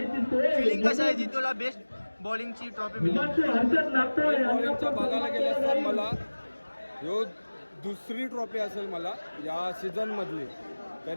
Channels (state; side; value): inverted; both; correlation -1.00